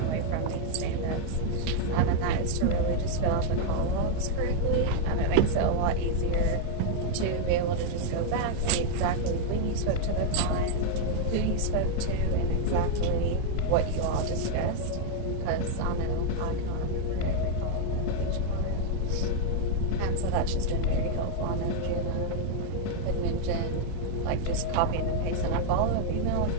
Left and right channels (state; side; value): different; both; correlation -0.01